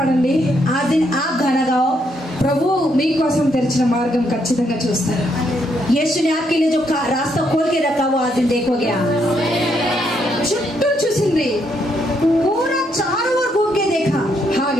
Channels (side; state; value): both; normal; correlation 0.75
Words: आज दिन आप गाना गाओ, ప్రభు మీకోసం తెరిచిన మార్గం ఖచ్చితంగా చూస్తారు. यीशु ने आपके लिए जो रास्ता खोल के रखा वो आज दिन देखोगे आप। చుట్టూ చూసింది पूरा चारों ओर घूम के देखा,